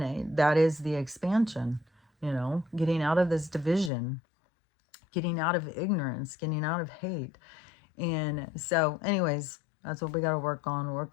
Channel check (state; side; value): drops out; right; at 3.9 s